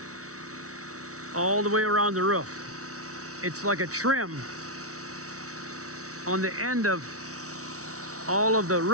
all the way around the roof. It's like a trim on the end of all of the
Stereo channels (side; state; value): left; late; 0.65 ms